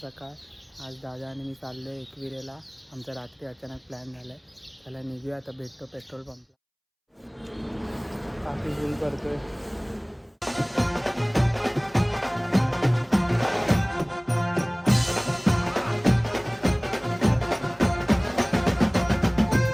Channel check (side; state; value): both; identical; correlation 1.00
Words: सकाळ. आज दादा आणि मी चाललो आहे एकविरेला. आमचा रात्री अचानक प्लॅन झाला आहे. त्याला निघूया, आता भेटतो पेट्रोल पंपला. काफी फुल करतोय.